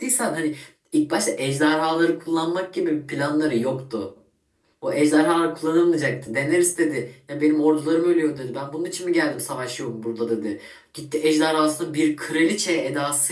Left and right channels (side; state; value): both; identical; correlation 1.00